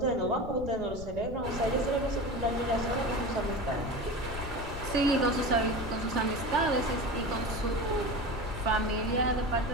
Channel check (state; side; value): noise; left; rumble, 10 dB below the sound